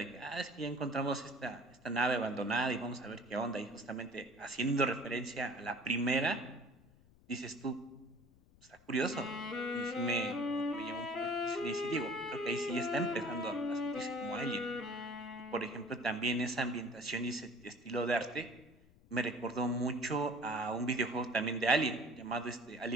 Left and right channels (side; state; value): left; noise; rumble, 27 dB below the sound